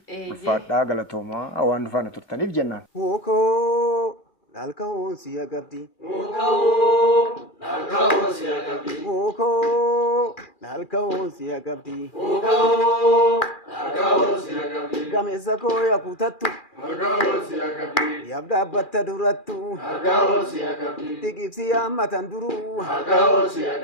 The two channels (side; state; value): right; late; 2.4 ms